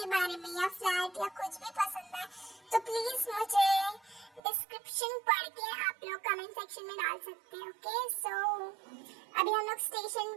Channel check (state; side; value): drops out; left; at 4.4 s